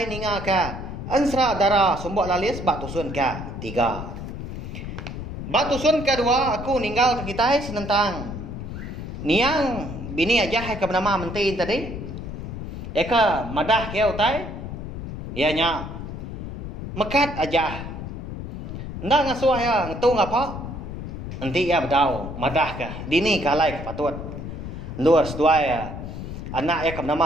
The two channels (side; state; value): left; noise; rumble, 8 dB below the sound